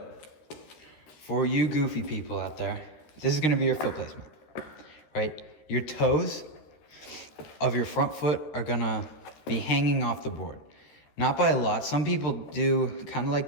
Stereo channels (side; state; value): right; late; 13 ms